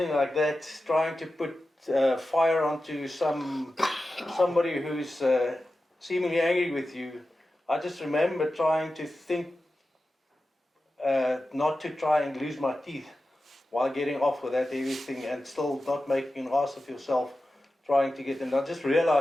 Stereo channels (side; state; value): both; normal; correlation 0.93